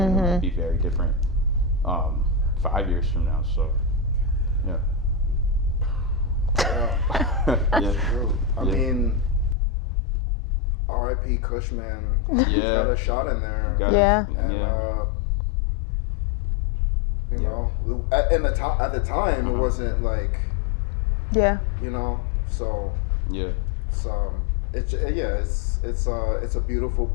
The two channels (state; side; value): drops out; right; at 9.6 s